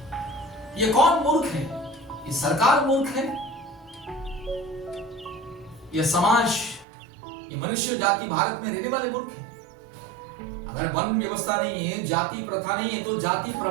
ये कौन मूर्ख है? ये सरकार मूर्ख है, ये समाज, ये मनुष्य जाति भारत में रहने वाले मूर्ख है। अगर वर्ण व्यवस्था नहीं है, जाति प्रथा नहीं है, तो जाति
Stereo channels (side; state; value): left; drops out; at 6.9 s